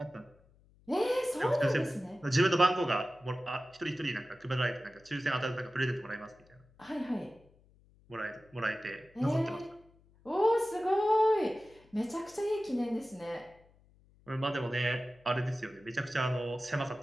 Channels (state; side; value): noise; left; hum, 29 dB below the sound